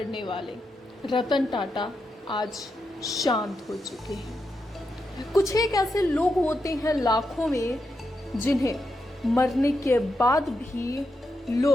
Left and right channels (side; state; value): both; normal; correlation 0.85